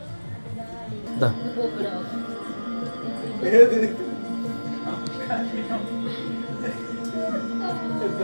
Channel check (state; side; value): inverted; both; correlation -1.00